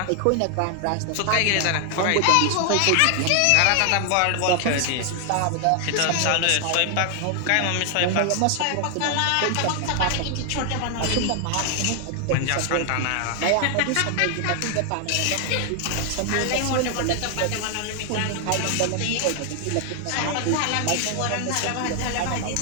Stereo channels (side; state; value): both; different; correlation 0.00